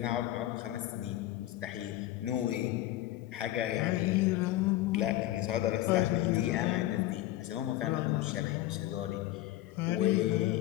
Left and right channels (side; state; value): right; quieter; 15.1 dB